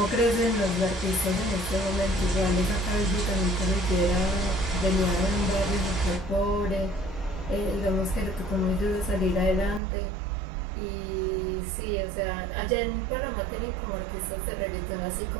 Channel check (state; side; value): drops out; left; at 9.8 s